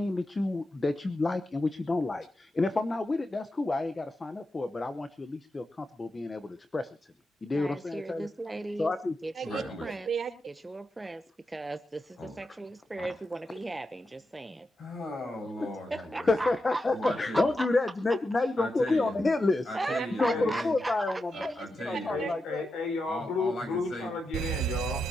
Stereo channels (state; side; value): normal; both; correlation 0.88